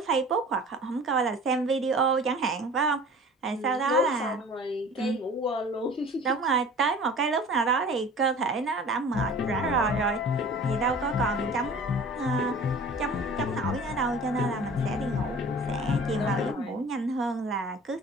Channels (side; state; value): both; normal; correlation 0.43